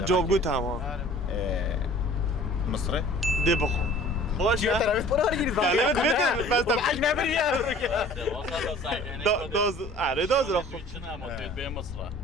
گو تمام مصري ده بخو خوش چیه طرف برو هر گیری نه بس حق نبری دوز آره دوز رو به مصر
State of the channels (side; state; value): both; normal; correlation 0.48